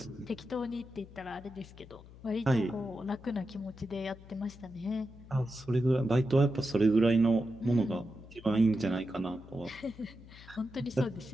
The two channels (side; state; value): left; noise; hum, 19 dB below the sound